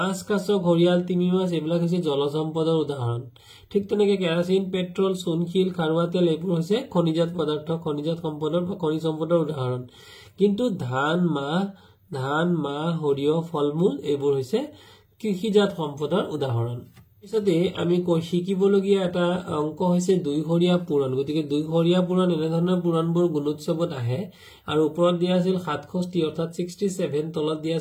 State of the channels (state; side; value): identical; both; correlation 1.00